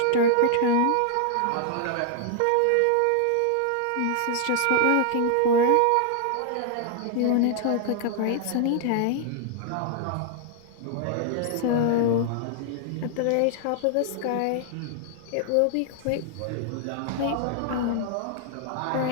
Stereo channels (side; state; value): both; different; correlation 0.00